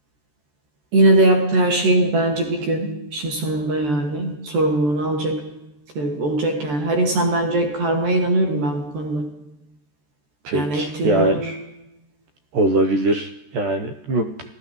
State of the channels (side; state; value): left; late; 14 ms